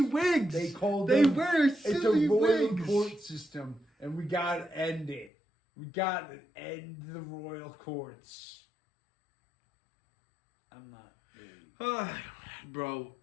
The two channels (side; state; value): right; drops out; at 5.3 s